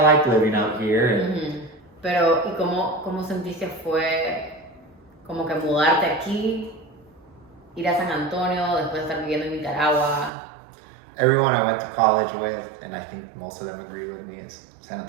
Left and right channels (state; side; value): drops out; left; at 10.3 s